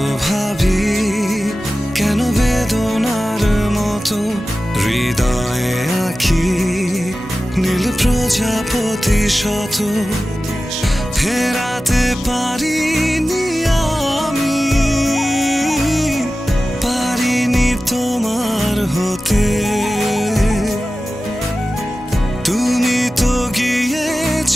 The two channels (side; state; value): both; normal; correlation 0.95